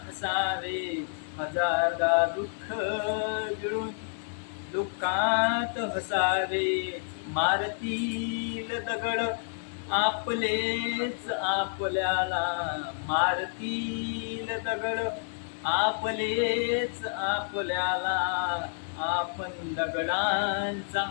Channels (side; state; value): right; silent; digital silence